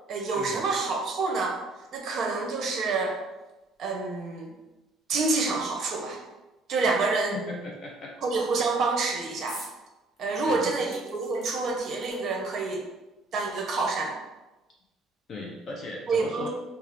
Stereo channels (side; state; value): left; quieter; 3.1 dB